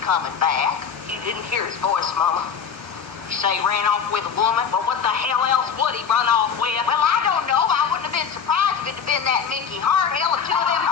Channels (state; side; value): quieter; right; 6.8 dB